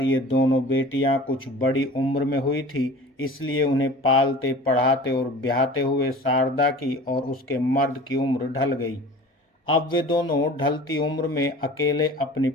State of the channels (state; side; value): normal; both; correlation 0.41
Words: ये दोनों बेटियां कुछ बड़ी उम्र में हुई थी, इसलिए उन्हें पालते पढ़ाते और ब्याहते हुए शारदा की और उसके मर्द की उम्र ढल गई। अब वे दोनों ढलती उम्र में अकेले अपनी